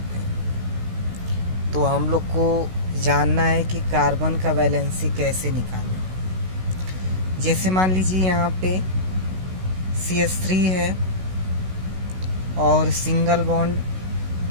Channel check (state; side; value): late; left; 16 ms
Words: हैं। तो हम लोग को जानना है कि कार्बन का वैलेंसी कैसे निकालें। जैसे मान लीजिए यहाँ पे CH3 है और single bond